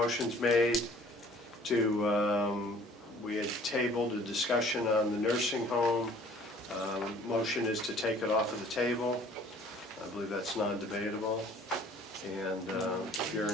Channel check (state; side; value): normal; both; correlation 0.53